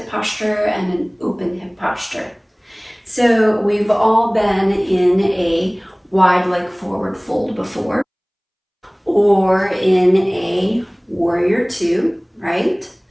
posture and an open hip posture. So we've all been in a wide leg forward fold before, or in a warrior two, right?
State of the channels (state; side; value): identical; both; correlation 1.00